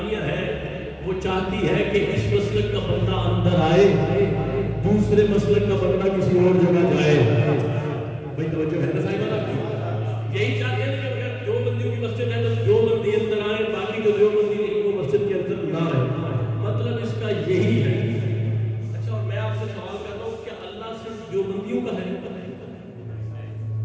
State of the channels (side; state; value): both; identical; correlation 1.00